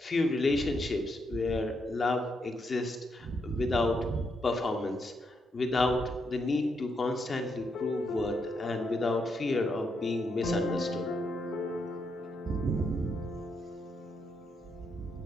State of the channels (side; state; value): both; normal; correlation 0.79